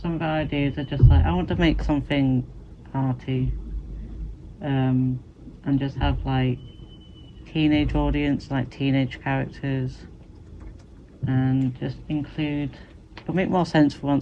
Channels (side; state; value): both; identical; correlation 1.00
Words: of the ideas are just like, I want to make something arty, and just have like teenage audience, like teenage characters, and just include, it'll make more sense for